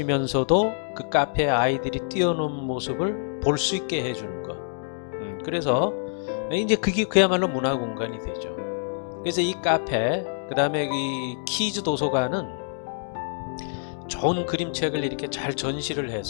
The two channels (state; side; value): silent; right; digital silence